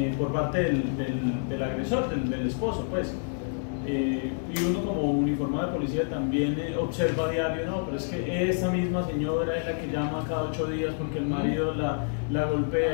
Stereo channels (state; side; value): silent; right; digital silence